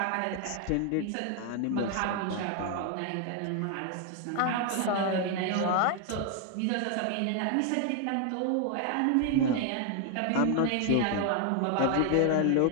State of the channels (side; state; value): both; different; correlation 0.00